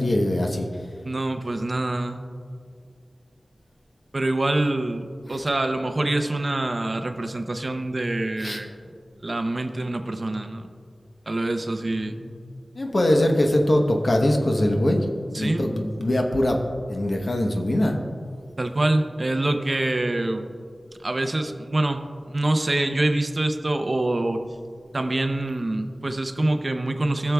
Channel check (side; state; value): both; normal; correlation 0.97